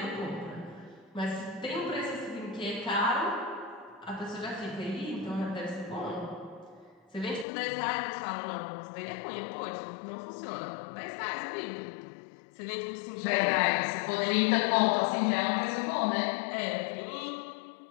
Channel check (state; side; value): drops out; right; at 7.5 s